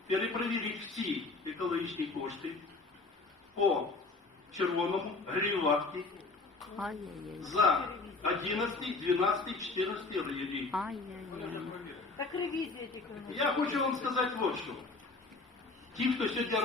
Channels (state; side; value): quieter; right; 3.7 dB